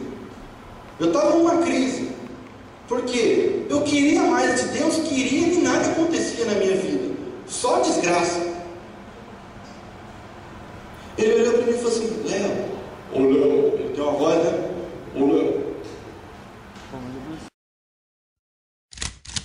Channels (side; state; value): both; identical; correlation 1.00